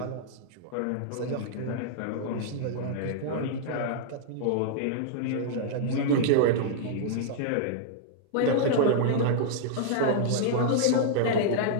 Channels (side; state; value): both; different; correlation -0.01